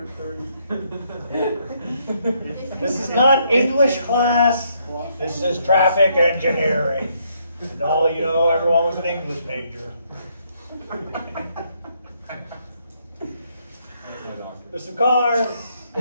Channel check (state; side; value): inverted; both; correlation -0.72